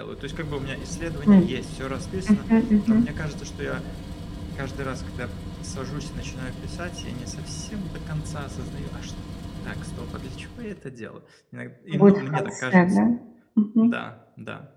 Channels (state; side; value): identical; both; correlation 1.00